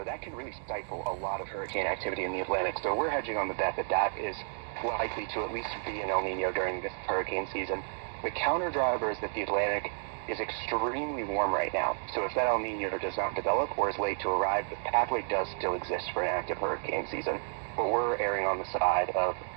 that can really stifle a lot of hurricane activity in the Atlantic. So we're hedging on the bet that that is likely to at least be an El Nino during this hurricane season. The counter driver is that the Atlantic is extremely warm right now. So if that El Nino does not develop or is late to arrive, the pathway does still exist for an active hurricane season. But we're erring on the side of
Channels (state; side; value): silent; left; digital silence